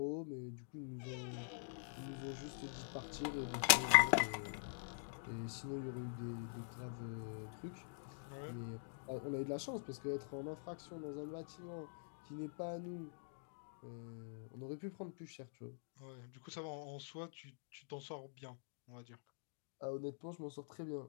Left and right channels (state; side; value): silent; right; digital silence